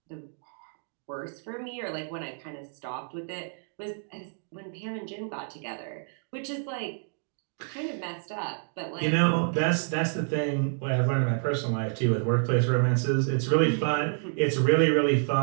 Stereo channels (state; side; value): silent; left; 59 dB below the other